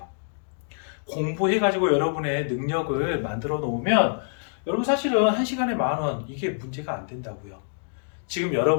공부해가지고 여러분의 능력을 만들어 놓으면 여러분 사실은 1시간에 10,000원 이게 문제가 안 된다고요. 지금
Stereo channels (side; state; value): right; silent; digital silence